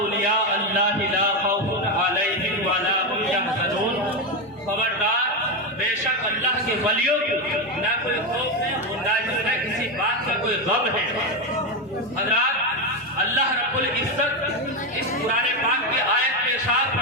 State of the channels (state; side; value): normal; both; correlation 0.10